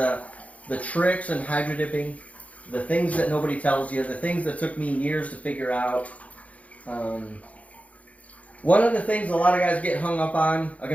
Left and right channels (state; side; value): late; right; 0.067 ms